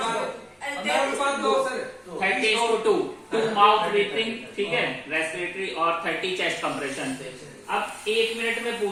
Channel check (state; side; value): identical; both; correlation 1.00